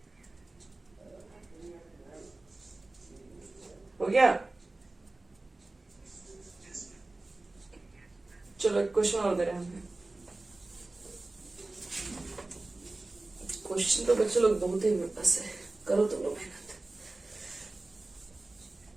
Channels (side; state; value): left; quieter; 3.0 dB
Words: हो गया। चलो एक क्वेश्चन और दे रहे हैं हमें। क्वेश्चन तो बच्चे लोग बहुत ही मेरे पास है, करो तुम लोग मेहनत।